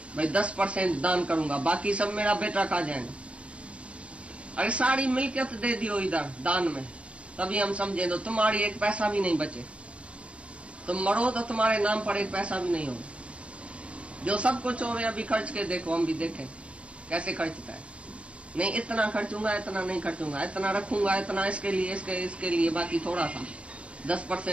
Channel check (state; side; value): late; left; 0.061 ms